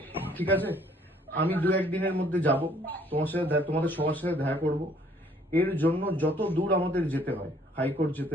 ঠিক আছে? আমি 2-1 দিনের মধ্যে যাব, তোমাদের সবার সাথে দেখা করব। এর জন্য যত দূর আমাদের যেতে হয়, হাইকোর্ট যেতে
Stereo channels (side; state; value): both; normal; correlation 0.61